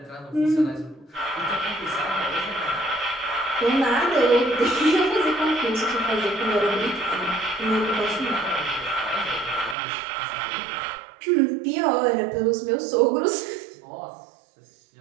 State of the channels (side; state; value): left; drops out; at 9.8 s